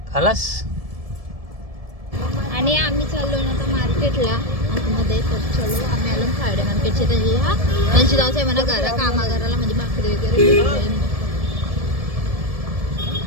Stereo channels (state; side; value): late; left; 1.7 ms